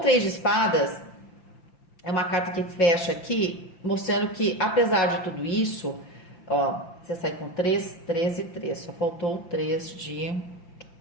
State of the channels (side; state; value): right; late; 5.8 ms